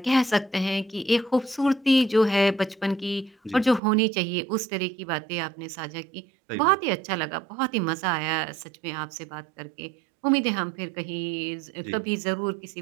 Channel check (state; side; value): drops out; left; at 3.8 s